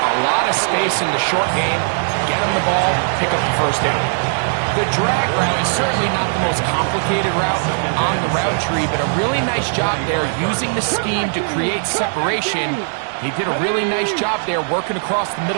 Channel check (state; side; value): silent; left; digital silence